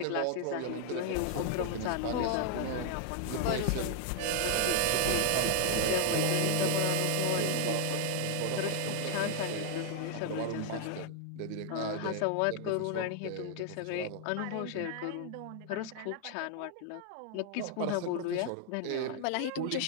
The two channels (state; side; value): different; both; correlation 0.00